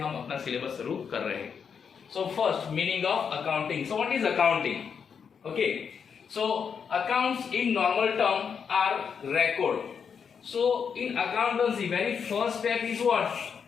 अपना सिलेबस शुरू कर रहे हैं. So first, meaning of accounting. So what is accounting? Okay, so accounts in normal term are record. So in accountancy, very first step is what?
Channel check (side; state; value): right; quieter; 6.7 dB